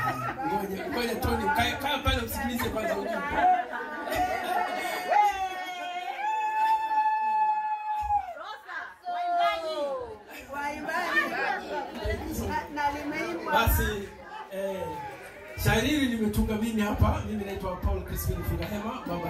Ngoja Tony, kaa pale usikilize kwanza ujumbe. Basi shairi hili nimetunga mimi hapa. Mimi naitwa Paul Crispin Fungahema, Baba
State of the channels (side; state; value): both; identical; correlation 1.00